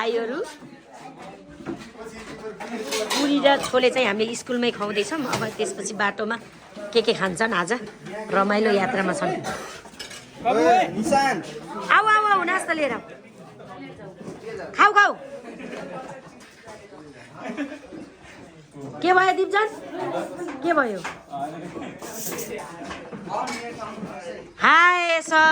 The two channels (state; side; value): identical; both; correlation 1.00